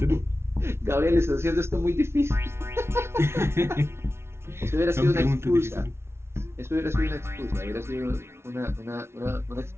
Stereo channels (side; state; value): left; late; 0.12 ms